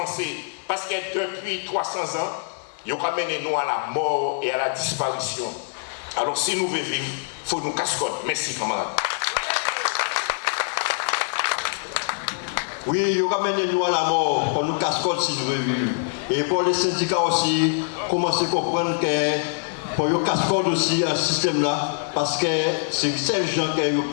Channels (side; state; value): right; silent; 63 dB below the other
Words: Parce que depuis 300 ans, ils ont mené nous à la mort et à la disparition. Alors si nous voulons vivre, il faut nous cascoder. Merci camarades. Oui, ils ont mené nous à la mort pour nous cascoder si nous voulons vivre. Et pour les syndicats aussi, commencer à comprendre que pour nous cascoder aussi un système là, parce que c'est ces gens qui ont